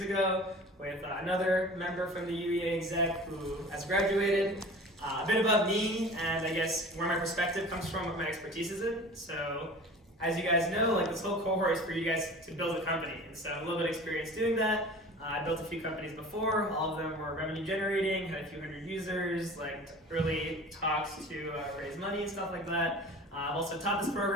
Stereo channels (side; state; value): both; normal; correlation 0.40